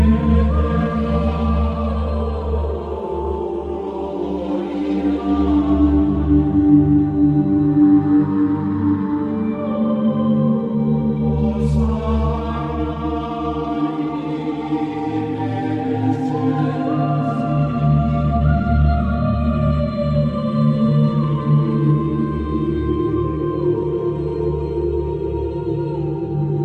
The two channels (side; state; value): both; identical; correlation 1.00